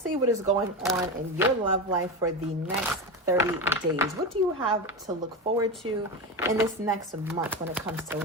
what is going on in your love life for the next 30 days. What do you have to look forward to in this next month when it comes to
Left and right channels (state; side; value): normal; both; correlation 0.20